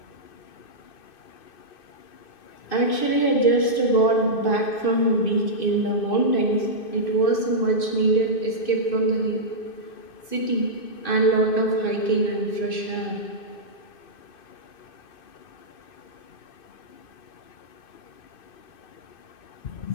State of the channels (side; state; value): right; late; 2.6 ms